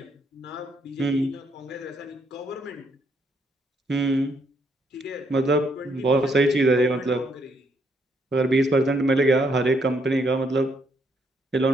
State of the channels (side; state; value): both; normal; correlation 0.73